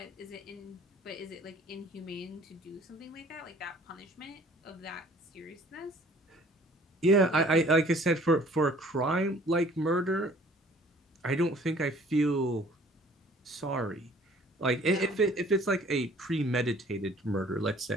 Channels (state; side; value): normal; both; correlation 0.54